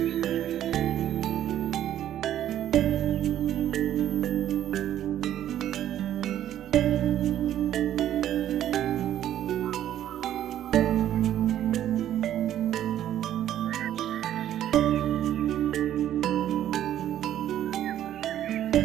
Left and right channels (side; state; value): left; quieter; 11.5 dB